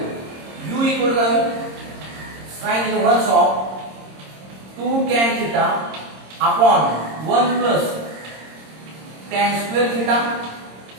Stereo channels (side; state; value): left; late; 26 ms